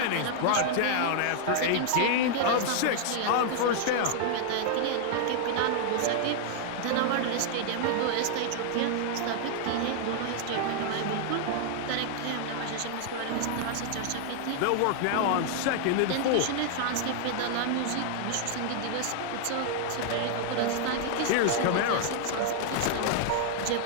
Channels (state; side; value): different; both; correlation -0.01